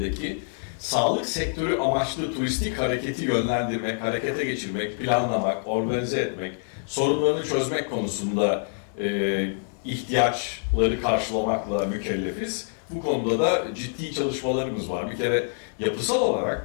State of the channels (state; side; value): silent; right; 61 dB below the other